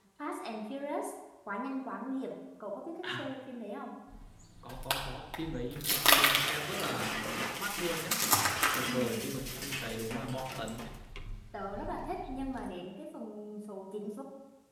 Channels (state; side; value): identical; both; correlation 1.00